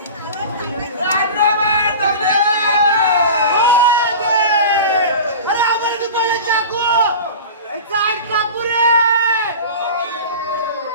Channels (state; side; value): inverted; both; correlation -0.34